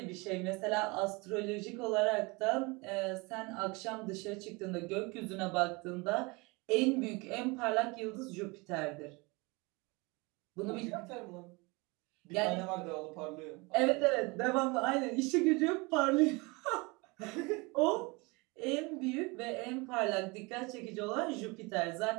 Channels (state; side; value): quieter; left; 26.6 dB